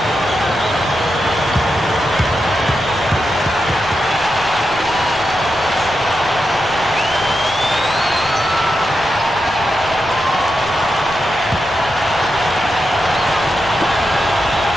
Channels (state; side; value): noise; left; rumble, 18 dB below the sound